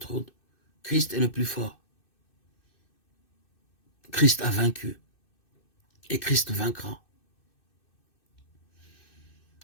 Christ est le plus fort. Christ a vaincu. Et Christ vaincra.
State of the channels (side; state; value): right; late; 2.6 ms